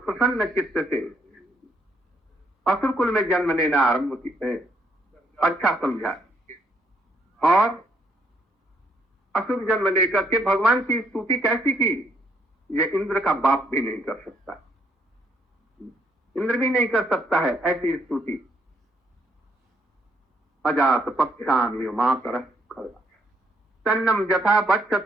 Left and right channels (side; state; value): both; normal; correlation 0.71